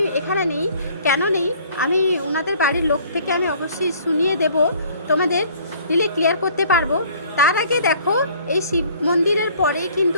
এখানে নেই। কেন নেই আমি ওনাদের বাড়ির লোক থেকে আমি অবশ্যই শুনিয়ে দেব, তোমাদের দিলে ক্লিয়ার করতে পারবো। তার আগে দেখো এই শিব মন্দিরের পরেই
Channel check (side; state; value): both; inverted; correlation -0.56